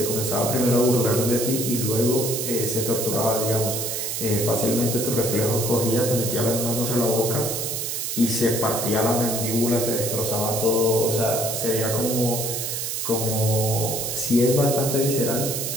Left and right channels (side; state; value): right; noise; hiss, 3 dB below the sound